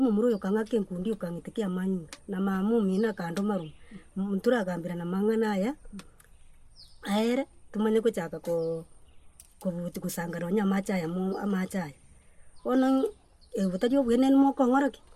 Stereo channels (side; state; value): both; identical; correlation 1.00